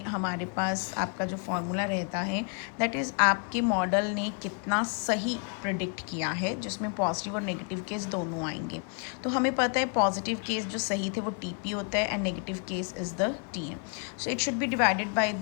हमारे पास आपका जो फॉर्मूला रहता है दैट इज़ आपके मॉडल ने कितना सही प्रिडिक्ट किया है, जिसमें पॉजिटिव और नेगेटिव केस दोनों आएंगे। तो हमें पता है पॉजिटिव केस जो सही थे वो टीपी होता है and negative case is the TN. So it should be divided by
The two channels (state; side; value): quieter; right; 39.1 dB